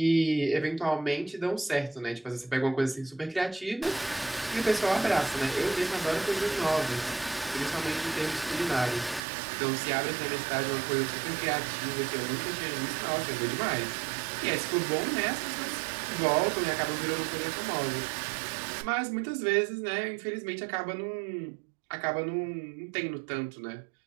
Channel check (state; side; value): drops out; left; at 9.2 s